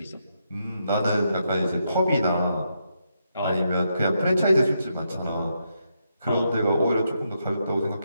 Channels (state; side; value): inverted; both; correlation -0.81